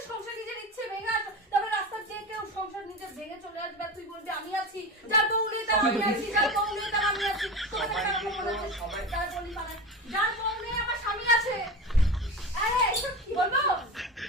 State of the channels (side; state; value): both; normal; correlation 0.27